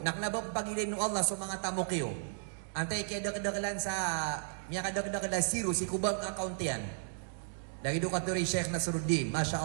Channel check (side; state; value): left; silent; digital silence